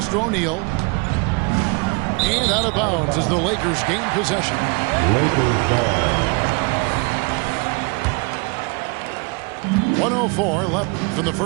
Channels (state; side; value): quieter; left; 30.9 dB